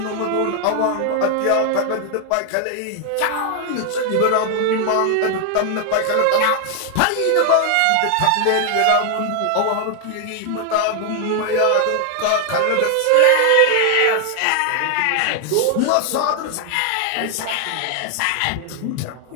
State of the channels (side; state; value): both; different; correlation 0.00